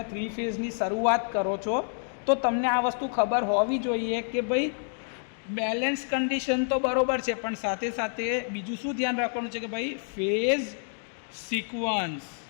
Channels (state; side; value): silent; right; digital silence